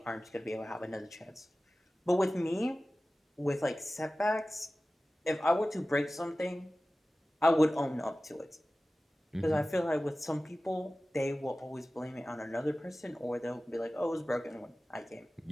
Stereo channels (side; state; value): both; normal; correlation 0.96